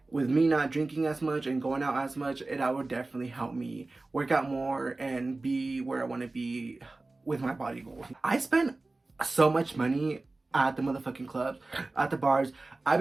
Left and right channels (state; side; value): quieter; left; 3.2 dB